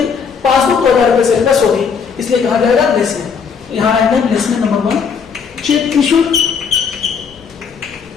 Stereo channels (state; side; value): quieter; right; 6.2 dB